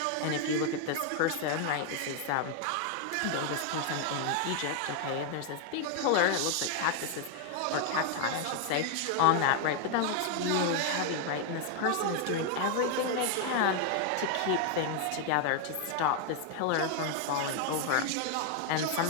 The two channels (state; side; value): different; both; correlation 0.00